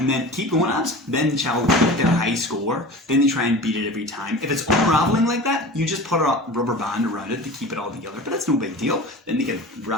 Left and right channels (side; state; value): both; normal; correlation 0.36